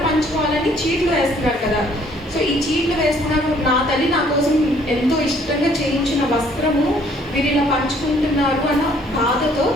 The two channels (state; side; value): normal; both; correlation 0.61